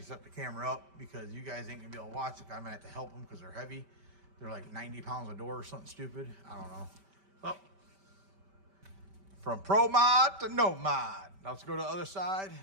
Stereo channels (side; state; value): left; late; 5.1 ms